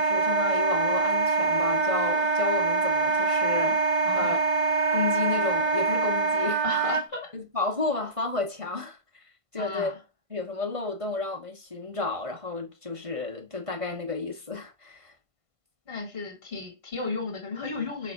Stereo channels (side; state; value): left; late; 1.5 ms